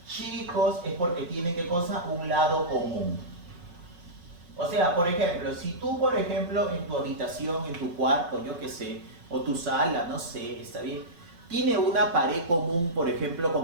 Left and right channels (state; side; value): late; left; 5.4 ms